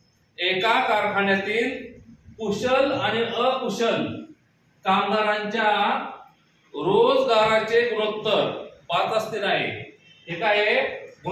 एका कारखान्यातील कुशल आणि अकुशल कामगारांच्या रोजगाराचे गुणोत्तर 5:3 आहे. हे काय आहे?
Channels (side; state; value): both; identical; correlation 1.00